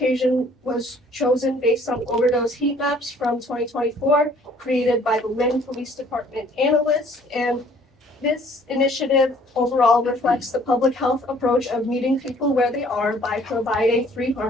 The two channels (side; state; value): both; normal; correlation 0.58